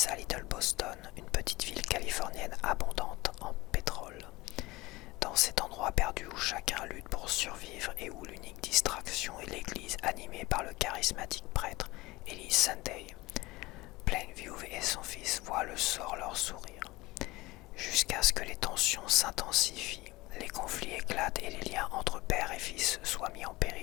à Little Boston, une petite ville californienne abondante en pétrole. Dans cet endroit perdu où chacun lutte pour survivre et où l'unique distraction est l'église animée par le charismatique prêtre Eli Sunday, Plainview et son fils voient le sort leur sourire. Jusqu'à ce que les tensions s'intensifient, les conflits éclatent et les liens entre père et fils soient mis en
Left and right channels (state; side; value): quieter; right; 20.8 dB